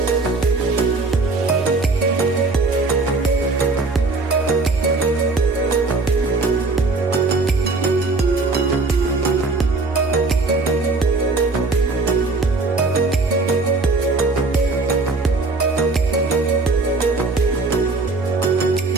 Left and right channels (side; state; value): left; quieter; 3.7 dB